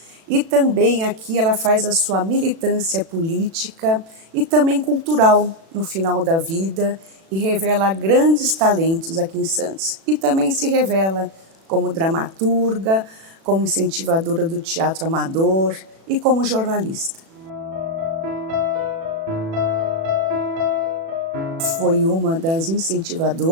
E também aqui ela faz a sua militância política e também cultural no final da vida, e revela grandes talentos aqui em Santos. E também se revela como dramaturga, como incentivadora do teatro amador e como jornalista. Foi uma das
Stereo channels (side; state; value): left; late; 36 ms